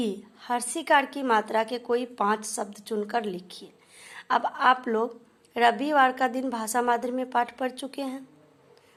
हर्षिकार की मात्रा के कोई 5 शब्द चुनकर लिखिए। अब आप लोग रविवार का दिन भाषा मादरी में पाठ पढ़ चुके हैं,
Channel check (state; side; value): identical; both; correlation 1.00